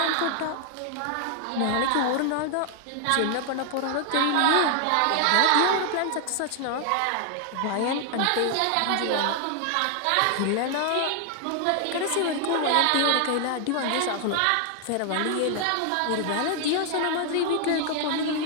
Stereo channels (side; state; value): both; different; correlation 0.00